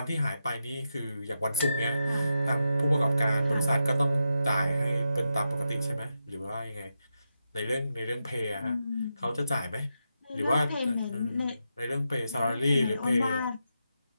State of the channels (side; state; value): both; inverted; correlation -0.87